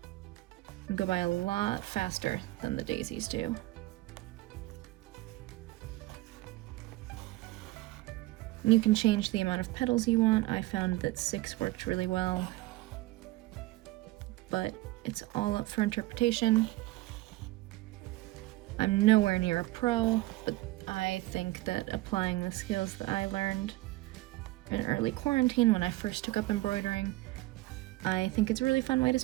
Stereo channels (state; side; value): quieter; left; 18.6 dB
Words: Go by a lot faster than the daisies do. And you can change the amount of petals you want. I found that 6 worked really well, but it's all up for interpretation. I'm nowhere near a pro, but I think that applying the skills that I learned in early quarantine when I first took up embroidering, I think it's a really fun way to